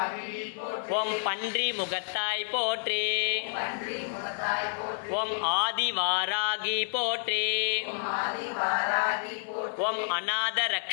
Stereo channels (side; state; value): right; silent; 55 dB below the other